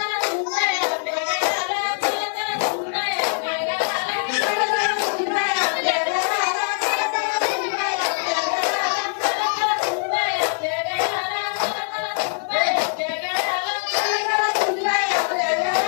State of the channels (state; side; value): silent; right; 64 dB below the other